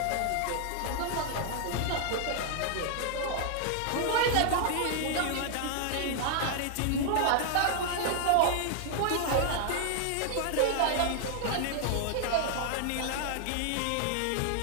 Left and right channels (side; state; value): both; different; correlation 0.00